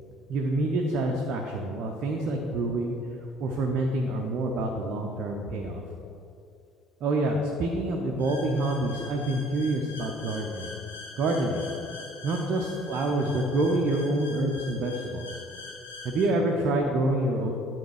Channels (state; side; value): normal; both; correlation 0.57